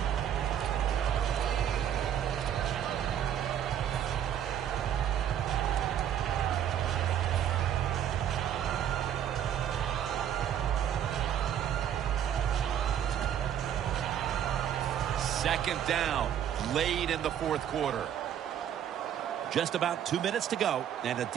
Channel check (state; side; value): quieter; left; 9.8 dB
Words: Second down, late in the fourth quarter. Just about 2 minutes to go, and the